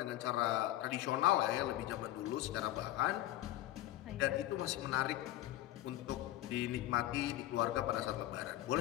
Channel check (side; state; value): right; quieter; 15.0 dB